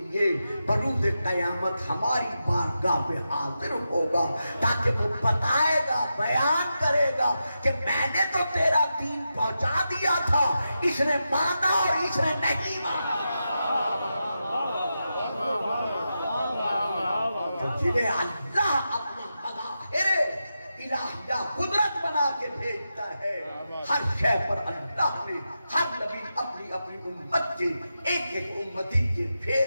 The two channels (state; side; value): inverted; both; correlation -0.89